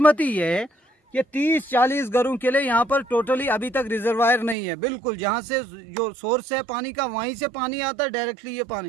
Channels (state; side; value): drops out; left; at 4.5 s